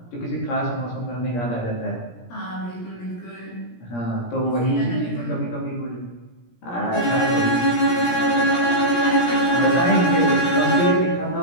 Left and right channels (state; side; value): late; right; 17 ms